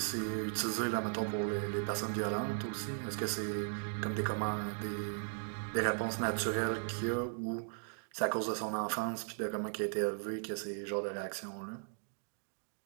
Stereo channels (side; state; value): left; silent; 53 dB below the other